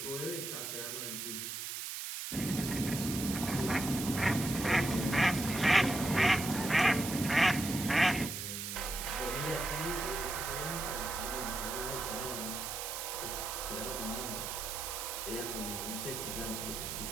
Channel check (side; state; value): right; noise; hiss, 5 dB below the sound